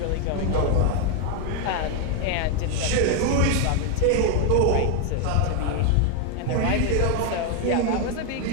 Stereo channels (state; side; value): different; both; correlation 0.01